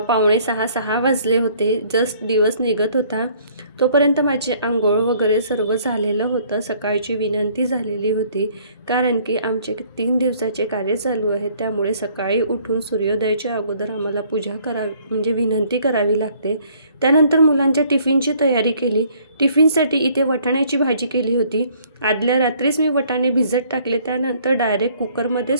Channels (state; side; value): inverted; both; correlation -0.60